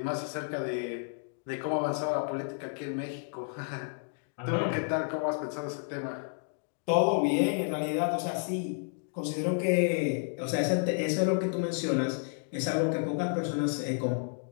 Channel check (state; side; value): silent; right; 57 dB below the other